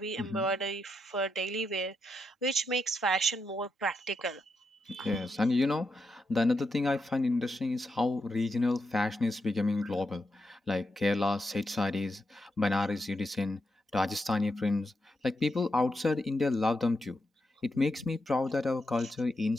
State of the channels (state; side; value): normal; both; correlation 0.84